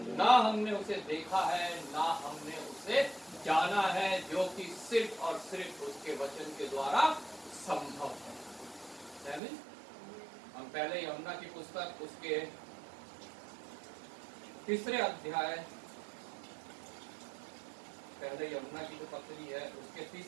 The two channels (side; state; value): left; drops out; at 9.4 s